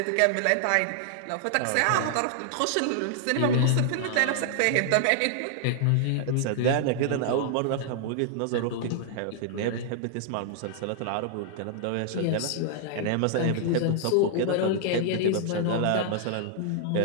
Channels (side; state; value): both; different; correlation -0.01